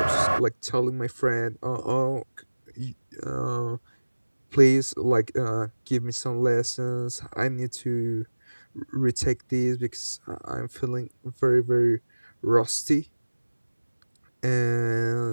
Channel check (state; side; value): inverted; both; correlation -1.00